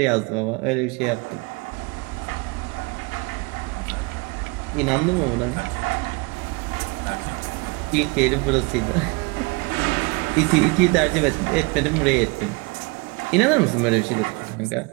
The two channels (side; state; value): left; quieter; 28.4 dB